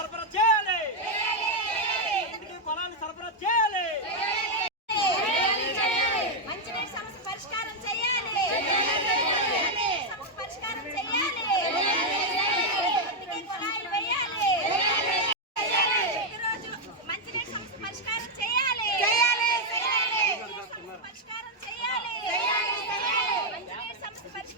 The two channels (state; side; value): normal; both; correlation 0.01